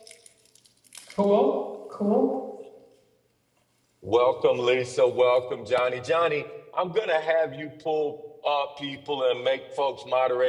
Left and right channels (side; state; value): both; identical; correlation 1.00